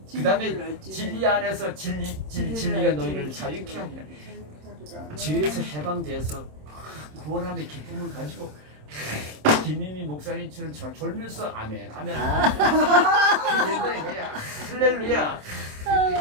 그 다음에 진리 안에서 진리가 너희를 자유케 하리라. 죄에서 해방돼서 구원함의 기쁨을 가지고 김희미 목사님처럼 졸면서 아멘 할렐루야.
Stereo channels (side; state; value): left; late; 27 ms